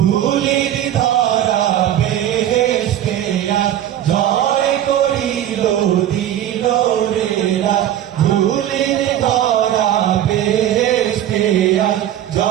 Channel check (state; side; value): quieter; left; 11.6 dB